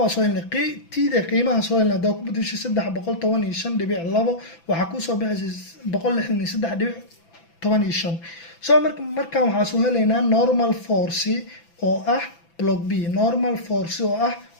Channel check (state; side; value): late; right; 6.0 ms